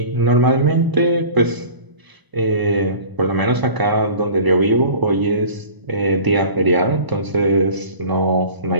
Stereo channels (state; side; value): late; left; 1.0 ms